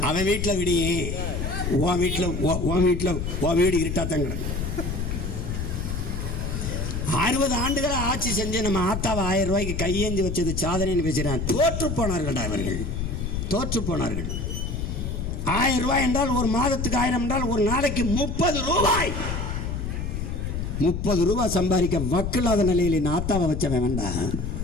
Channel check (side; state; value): left; noise; rumble, 3 dB below the sound